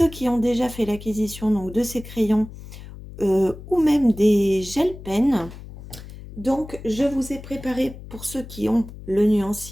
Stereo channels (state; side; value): noise; left; hum, 15 dB below the sound